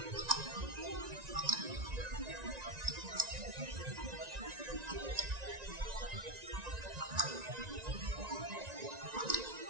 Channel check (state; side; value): late; left; 1.9 ms